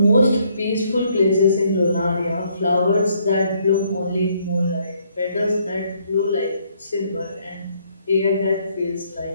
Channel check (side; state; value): both; inverted; correlation -0.68